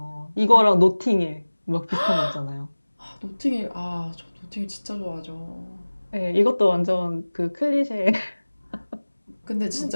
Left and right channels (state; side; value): inverted; both; correlation -1.00